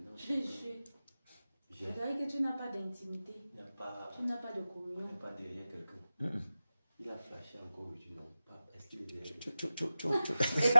Je dirais que tu n'as pas d'intimité. Tu n'as pas de communion. Il n'y a pas derrière quelqu'un. Il a flashé encore aujourd'hui, non? Est-ce qu'il est derrière?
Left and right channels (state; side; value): inverted; both; correlation -0.94